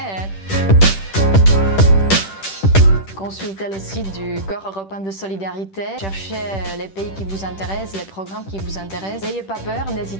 Consultez le site du Corps européen de solidarité, cherchez les pays qui vous intéressent, les programmes qui vous intéressent. N'ayez pas peur,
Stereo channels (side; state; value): right; late; 10 ms